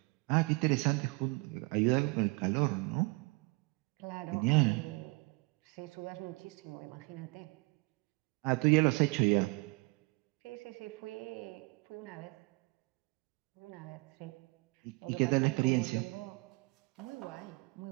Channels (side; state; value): left; quieter; 26.6 dB